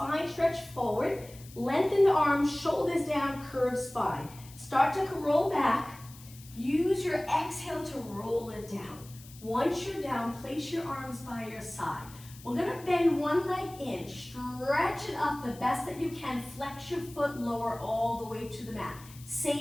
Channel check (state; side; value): noise; left; hiss, 20 dB below the sound